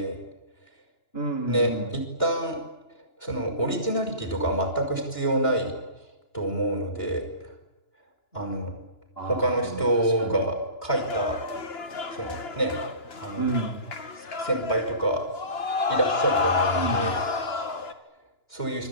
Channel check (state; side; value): late; right; 2.9 ms